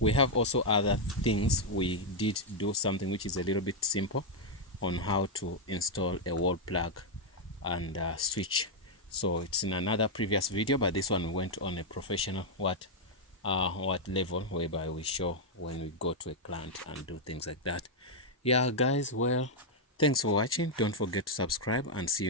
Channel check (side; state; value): both; normal; correlation -0.02